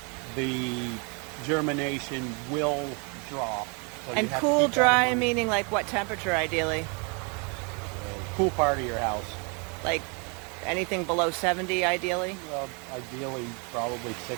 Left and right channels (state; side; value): quieter; left; 34.5 dB